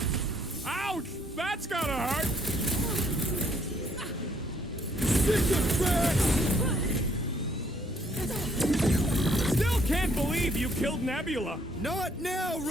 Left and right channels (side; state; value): both; normal; correlation 0.67